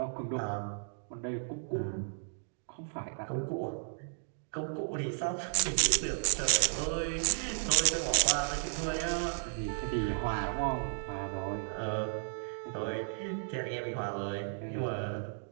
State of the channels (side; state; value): left; silent; digital silence